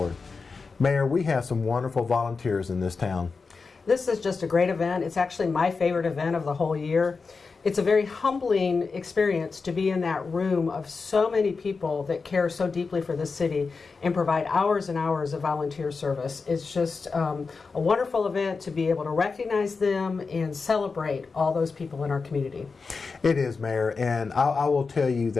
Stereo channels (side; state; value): right; quieter; 4.6 dB